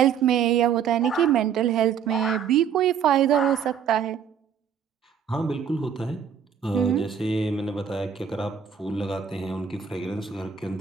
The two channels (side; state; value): left; quieter; 7.7 dB